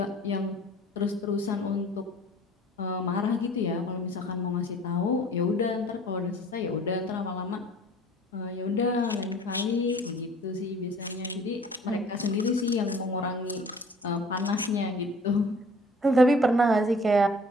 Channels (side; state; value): both; normal; correlation 0.50